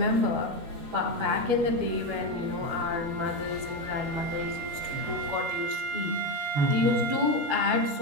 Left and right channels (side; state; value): left; late; 12 ms